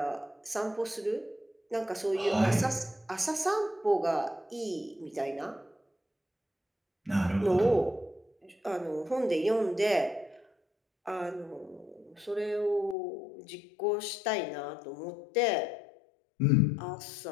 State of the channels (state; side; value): drops out; right; at 13.0 s